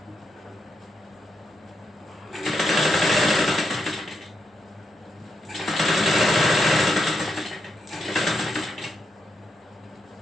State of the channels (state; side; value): normal; both; correlation 0.82